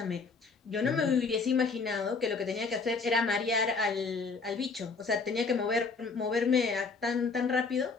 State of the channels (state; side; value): quieter; right; 4.5 dB